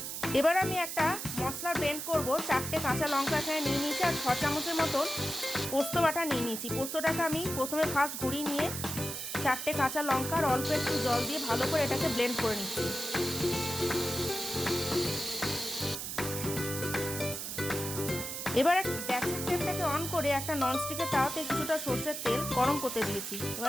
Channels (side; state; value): right; noise; hiss, 5 dB below the sound